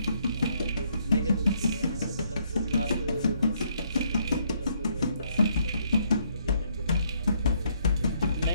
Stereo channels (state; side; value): inverted; both; correlation -0.70